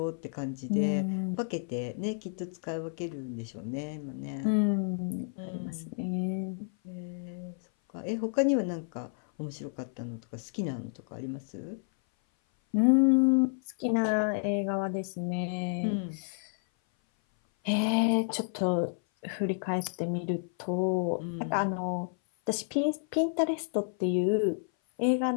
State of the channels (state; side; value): silent; right; 56 dB below the other